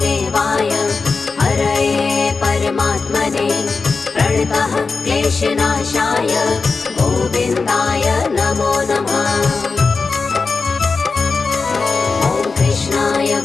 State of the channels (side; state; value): right; quieter; 4.4 dB